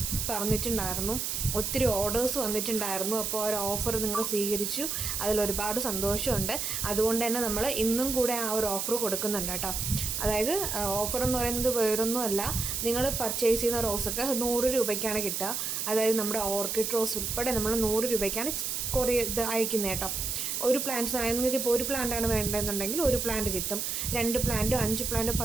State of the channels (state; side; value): noise; right; hiss, 2 dB below the sound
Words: പറഞ്ഞിട്ടുണ്ടായിരുന്നു, ഒത്തിരി ഓർഡേഴ്സ് വന്നിട്ടുണ്ടായിരുന്നു. അപ്പോൾ ആ ഒരു ഓഫർ നിങ്ങൾ സ്വീകരിച്ചു, അതിലൊരുപാട് സന്തോഷമുണ്ട്. അതുകൊണ്ട് തന്നെ നമ്മൾ ഇന്നും കൂടെ ആ ഒരു ഓഫർ കൊടുക്കുന്നുണ്ട് കേട്ടോ. അതായത് ഓഫർ എന്ന് പറയുന്നത് വേറൊന്നുമല്ല, നിങ്ങൾ പർച്ചേസ് ചെയ്യുന്ന റോസൊക്കെ 100 രൂപയ്ക്കാണ് കിട്ടുക. അതായത് നമ്മുടെ ഓർക്കിഡ് റോസ് ഉൾപ്പെടെ നമ്മൾ 100 രൂപയ്ക്കാണ് ഇത് അയക്കുന്നത് കേട്ടോ. ഒരു പ്ലാന്റ്സ് ആണെങ്കിൽ നിങ്ങൾക്ക് ഇപ്പോൾ ഒരു പ്ലാന്റാണ് വേണ്ടതെന്നുണ്ടെങ്കിൽ ഒരു പ്ലാന്റ് കിട്ടും. 2 പ്ലാന്റോ 5 പ്ലാന്റോ